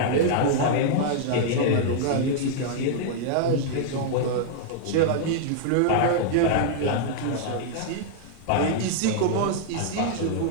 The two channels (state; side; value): different; both; correlation -0.01